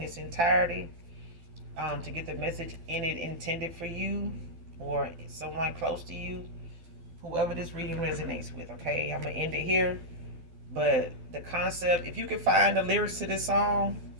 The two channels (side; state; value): left; late; 12 ms